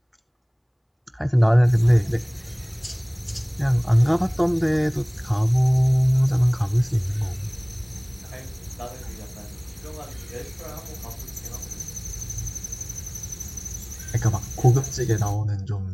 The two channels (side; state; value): both; identical; correlation 1.00